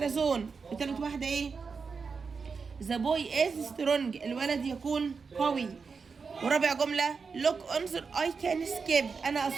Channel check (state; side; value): quieter; left; 5.2 dB